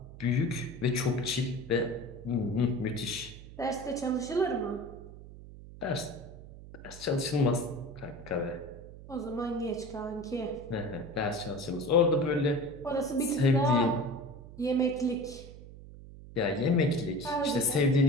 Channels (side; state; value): right; noise; hum, 16 dB below the sound